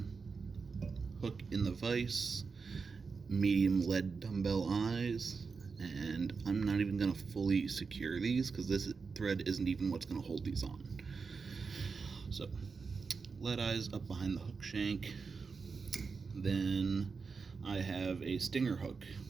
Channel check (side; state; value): left; quieter; 5.0 dB